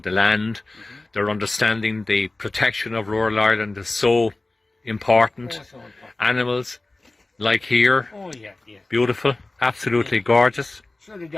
the land. They're understanding the protection of rural Ireland is so important. Oh, so important. Animals, like here, Oh, yeah. beautiful, absolutely gorgeous. Sure, the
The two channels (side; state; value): right; quieter; 3.0 dB